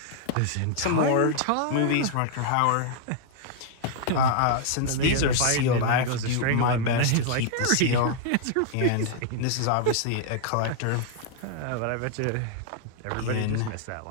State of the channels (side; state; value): both; different; correlation -0.01